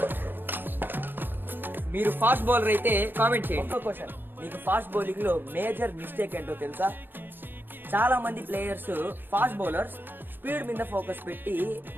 మీరు ఫాస్ట్ బౌలర్ అయితే కామెంట్ చేయండి. ఒక్క క్వశ్చన్, మీకు ఫాస్ట్ బౌలింగ్ లో మేజర్ మిస్టేక్ ఏంటో తెలుసా? చాలా మంది ప్లేయర్స్ ఫాస్ట్ బౌలర్స్ స్పీడ్ మీద ఫోకస్ పెట్టి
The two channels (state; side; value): late; left; 0.095 ms